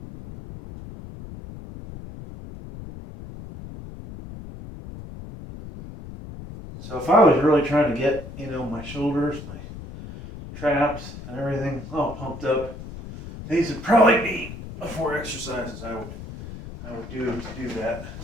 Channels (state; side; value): noise; left; rumble, 12 dB below the sound